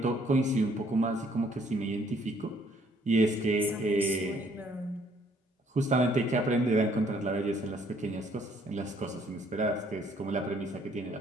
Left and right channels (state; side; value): normal; both; correlation 0.64